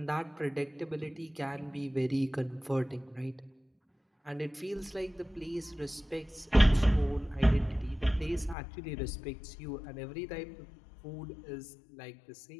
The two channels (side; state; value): right; drops out; at 8.6 s